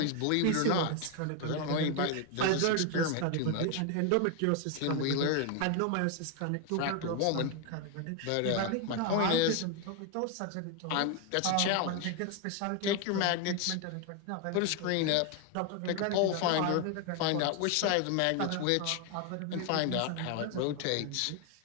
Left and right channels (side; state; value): both; different; correlation 0.01